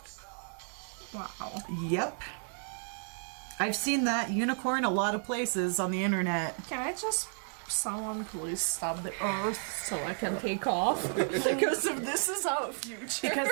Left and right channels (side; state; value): left; silent; 56 dB below the other